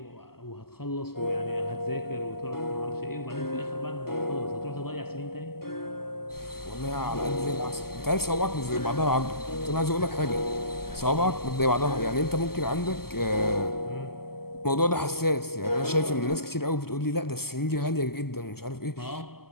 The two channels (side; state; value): right; late; 0.95 ms